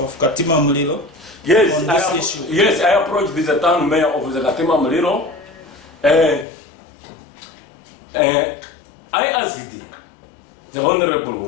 Katima Mulilo? Yes, I approached the town mayor of the Katima Mulilo. I asked the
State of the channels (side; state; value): right; drops out; at 6.5 s